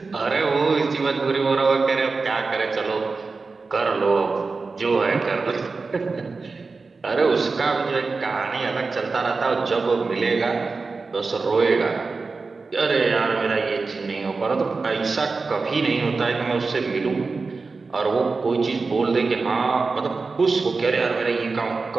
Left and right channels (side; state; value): left; quieter; 4.1 dB